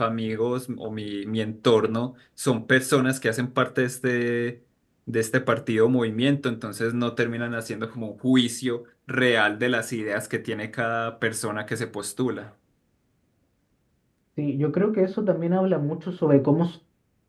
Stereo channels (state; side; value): identical; both; correlation 1.00